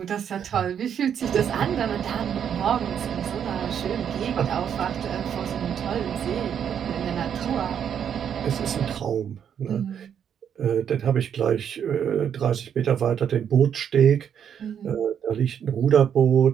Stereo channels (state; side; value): quieter; left; 8.5 dB